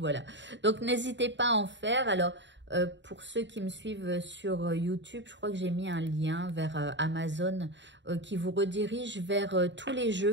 Donc n'hésitez pas à en faire. Alors pour ceux qui me suivent sur YouTube, je crois que j'ai mis un lien vers Amazon qui vous redirige vers tous les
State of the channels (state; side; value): late; left; 0.53 ms